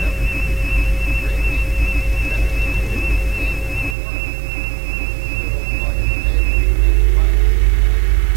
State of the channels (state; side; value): drops out; left; at 4.0 s